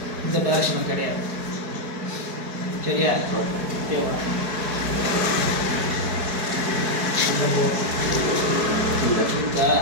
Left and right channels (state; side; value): late; left; 4.6 ms